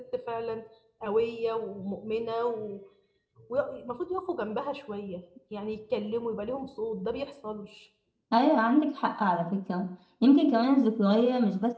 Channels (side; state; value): both; identical; correlation 1.00